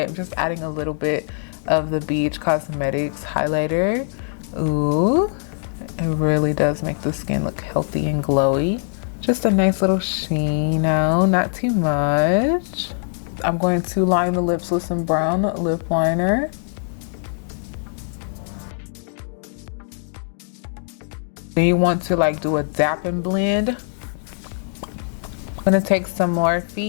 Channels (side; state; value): right; silent; digital silence